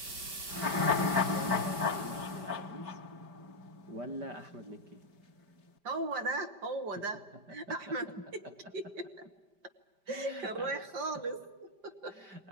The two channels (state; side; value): late; left; 5.1 ms